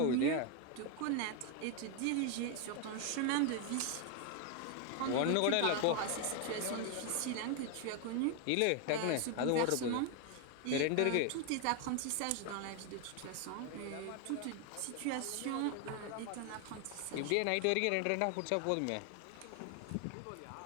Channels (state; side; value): different; both; correlation 0.01